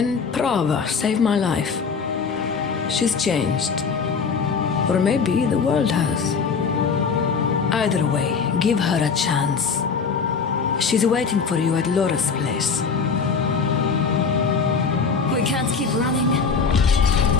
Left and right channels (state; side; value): quieter; right; 5.5 dB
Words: Prava saved my life. She's changed. Or maybe the world has. Either way, give her a chance. She's waiting for you at Lorath's place. We can't keep running.